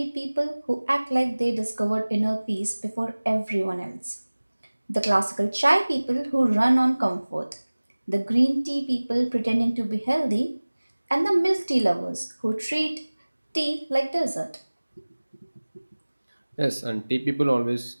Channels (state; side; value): inverted; both; correlation -1.00